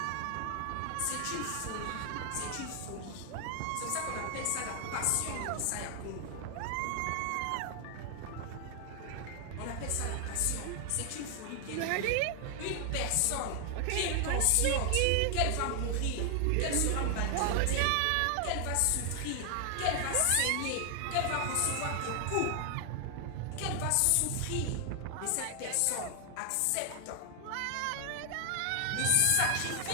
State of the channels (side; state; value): both; different; correlation 0.00